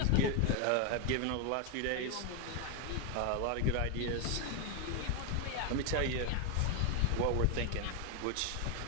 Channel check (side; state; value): both; different; correlation 0.01